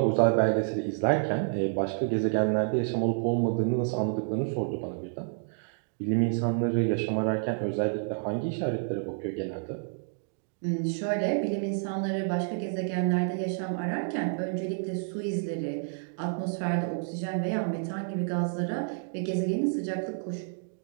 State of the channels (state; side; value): silent; left; digital silence